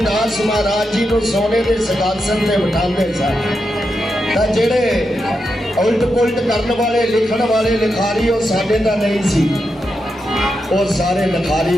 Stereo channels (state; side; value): normal; both; correlation 0.86